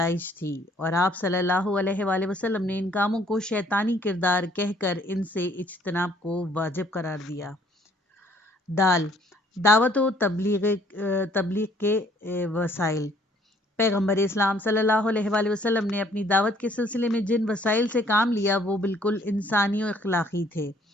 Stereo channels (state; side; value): normal; both; correlation 0.61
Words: تھی اور آپ صلی اللہ علیہ وآلہ وسلم نے ان کاموں کو شیطانی کردار کہہ کر ان سے اجتناب کو واجب قرار دیا۔ دعوت و تبلیغ کے وسائل۔ پیغمبر اسلام صلی اللہ علیہ وآلہ وسلم نے اپنی دعوت کے سلسلے میں جن وسائل سے کام لیا وہ بالکل انسانی و اخلاقی تھے۔